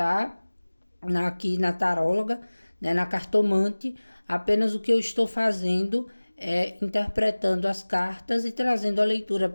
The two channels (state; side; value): inverted; both; correlation -1.00